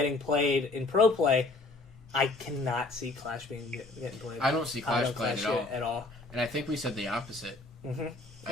played in pro play. I cannot see Clash getting played. I don't see Clash played at all. And I think we said the opposite. Mm-hmm.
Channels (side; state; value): right; quieter; 3.1 dB